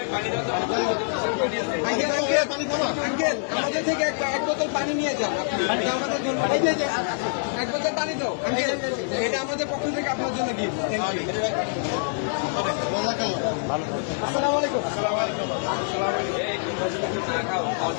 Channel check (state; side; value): silent; right; digital silence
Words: আঙ্কেল আঙ্কেল আঙ্কেল আমাদের থেকে এক বোতল পানি নিয়ে যান। এটা আমাদের জন্য, এই যে এক বোতল পানি দাও আঙ্কেল, এটা আমাদের পক্ষ থেকে আপনার জন্য গিফট। Thank you. আসসালামু আলাইকুম।